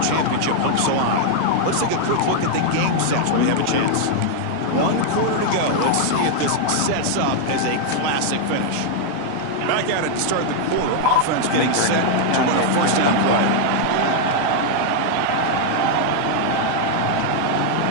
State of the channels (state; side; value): different; both; correlation 0.00